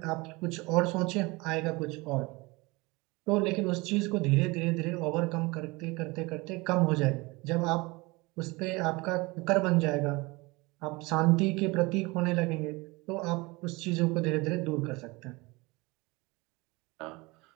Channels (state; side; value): quieter; left; 24.3 dB